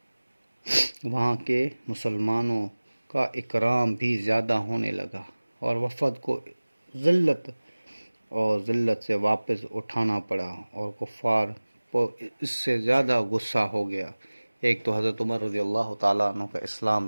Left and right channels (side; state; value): both; inverted; correlation -1.00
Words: وہاں کے مسلمانوں کا اکرام بھی زیادہ ہونے لگا، اور وفد کو ذلت سے واپس اٹھانا پڑا، اور کفار کو اس سے زیادہ غصہ ہو گیا۔ ایک تو حضرت عمر رضی اللہ تعالیٰ عنہ کا